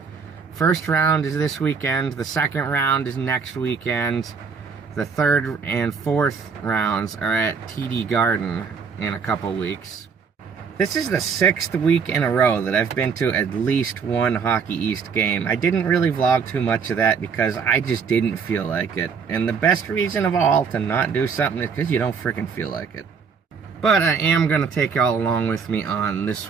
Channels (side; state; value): left; quieter; 5.8 dB